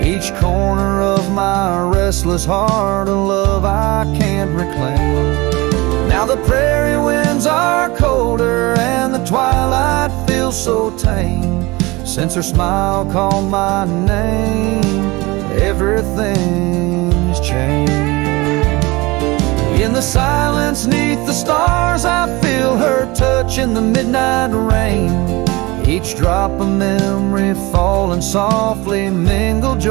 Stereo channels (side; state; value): left; quieter; 22.7 dB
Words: Each corner of my restless heart, a love I can't reclaim. Now the prairie winds are colder and the twilight feels so tame. Since her smile called my name, everything's changed. In the silence neath the stars, I feel her touch in the midnight rain. Each drop of memory falling softly mingle